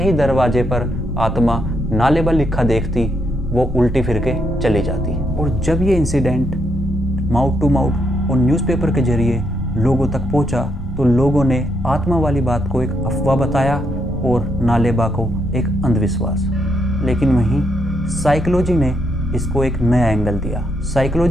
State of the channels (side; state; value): both; normal; correlation 0.77